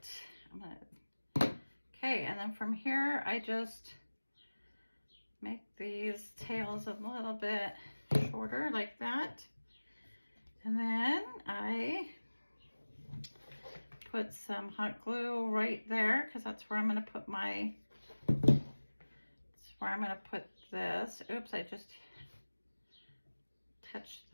Okay, and then from here, I just make these tails a little bit shorter like that. And then I put some hot glue right there, because that's where I'm going to put this. Oops, I just touched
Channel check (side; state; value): both; inverted; correlation -1.00